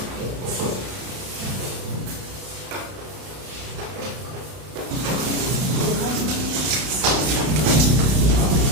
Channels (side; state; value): left; late; 32 ms